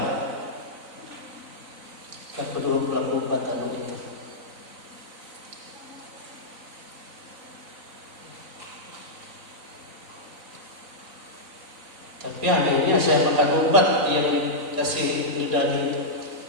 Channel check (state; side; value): late; left; 3.9 ms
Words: Kedua pelaku batal itu. Tapi anehnya saya makan obat yang kasih dari